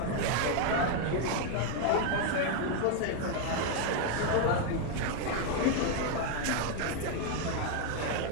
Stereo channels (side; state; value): both; different; correlation 0.00